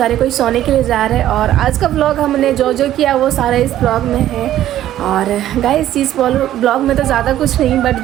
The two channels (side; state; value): left; quieter; 12.7 dB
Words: कोई सोने के लिए जा रहे हैं। और आज का व्लॉग हमने जो किया वो सारा इस ब्लॉग में है। और गाइस इस ब्लॉग में तो ज़्यादा कुछ नहीं, बट